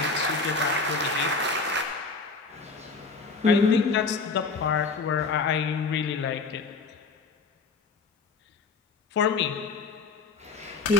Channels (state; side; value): quieter; right; 4.4 dB